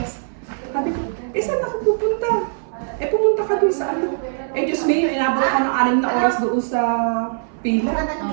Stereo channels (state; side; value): silent; left; 59 dB below the other